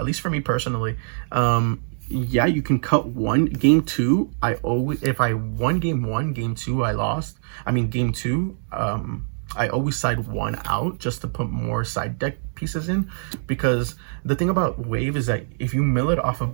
least for me personally. Yeah, you can cut 1. Game 2, if I won game 1, game 2 I lost. I mean, game 2, I always side 1 out just to put more side deck pieces in, because the thing about wave is that if you mill it off of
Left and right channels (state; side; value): silent; left; digital silence